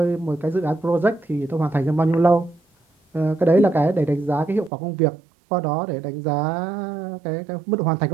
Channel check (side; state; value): left; drops out; at 4.7 s